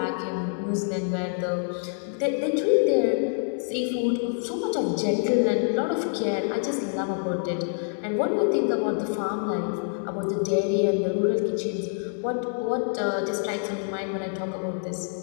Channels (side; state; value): right; silent; digital silence